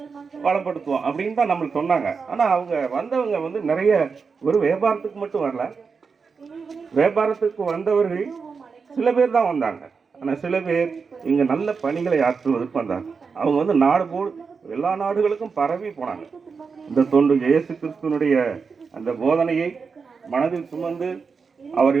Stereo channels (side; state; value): left; quieter; 5.3 dB